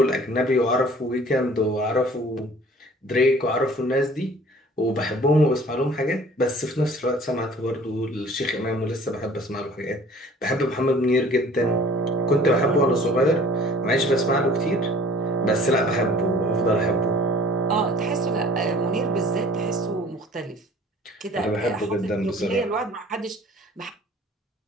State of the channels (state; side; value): normal; both; correlation 0.49